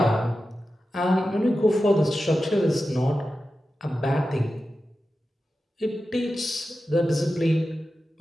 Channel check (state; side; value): normal; both; correlation 0.92